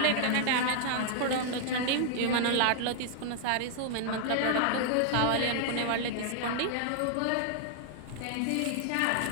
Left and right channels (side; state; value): both; different; correlation -0.01